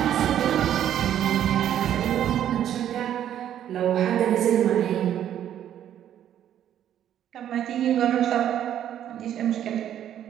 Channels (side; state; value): left; quieter; 10.6 dB